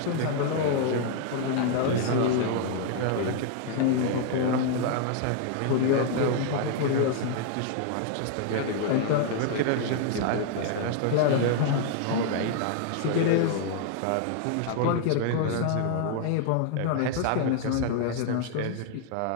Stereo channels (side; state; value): both; different; correlation 0.00